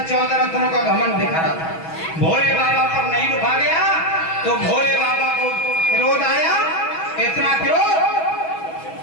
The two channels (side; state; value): right; late; 6.2 ms